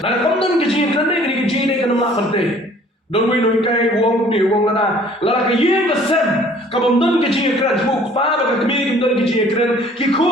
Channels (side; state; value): both; normal; correlation 0.54